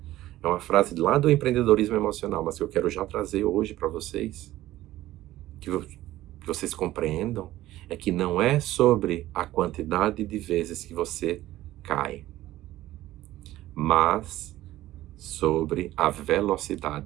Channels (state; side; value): quieter; left; 15.4 dB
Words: É uma frase lá do empreendedorismo emocional, mas que eu quero já trazer hoje para vocês, que vocês compreendam, é que não é sobre a quantidade de vezes que você cai, mas sobre a